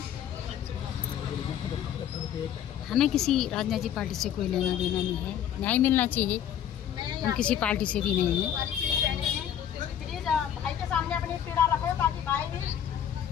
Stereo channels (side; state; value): right; quieter; 9.9 dB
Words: हमें किसी राजनीतिक पार्टी से कोई लेना देना नहीं है, न्याय मिलना चाहिए, हम किसी पार्टी से भी नहीं हैं। प्लीज भाई के सामने अपनी पीड़ा रखो ताकि भाई भी